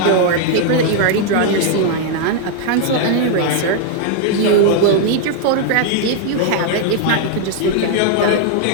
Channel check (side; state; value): both; different; correlation 0.00